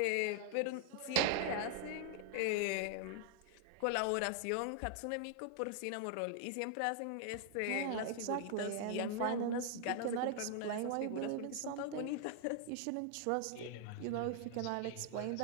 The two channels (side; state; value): both; different; correlation 0.00